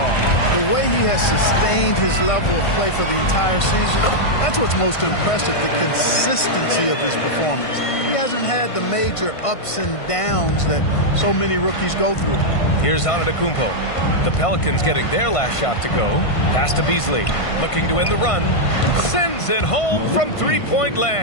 The way he has sustained his level of play for the entire season, that's what's most impressive, the consistency of his performance. He hasn't had the major ups and downs that so many rookies go through. Here's Antetokounmpo. The Pelicans getting their last shot to go. Pass to Beasley. Looking to win the run. Sends it home from three-point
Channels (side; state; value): right; late; 1.5 ms